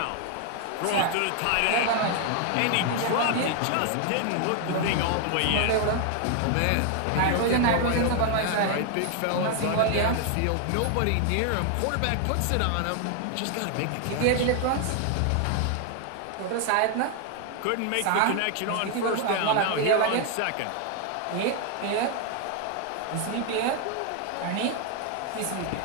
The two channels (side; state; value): both; different; correlation 0.00